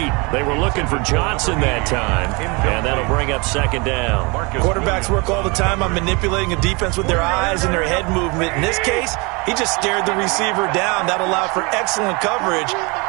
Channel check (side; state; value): left; quieter; 28.6 dB